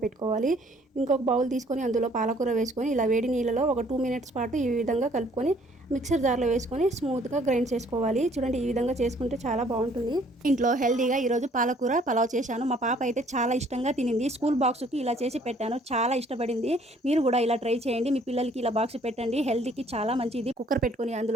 ఇంకొక బౌల్ తీసుకొని అందులో పాలకూర వేసుకొని ఇలా వేడి నీళ్ళలో ఒక 2 మినిట్స్ పాటు ఈ విధంగా కలుపుకొని మిక్సర్ జార్లో వేసుకొని స్మూత్గా గ్రైండ్ చేసుకోవాలి. చూడండి, ఈ విధంగా చేసుకుంటే చాలా బాగుంటుంది. ఇంట్లో హెల్తీగా ఈరోజు పాలకూర పలావ్ చేశాను. మా పాప అయితే చాలా ఇష్టంగా తినింది. స్కూల్ బాక్స్కి ఇలా చేసి పెట్టాను, చాలా ఇష్టపడింది. మీరు కూడా ఇలా ట్రై చేయండి, మీ పిల్లలకి ఇలా బాక్స్ పెట్టండి, హెల్తీకి చాలా మంచిది. కుక్కర్ పెట్టుకొని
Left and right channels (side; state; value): both; normal; correlation 0.60